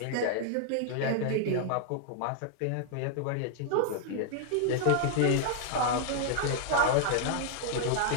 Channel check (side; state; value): both; different; correlation 0.00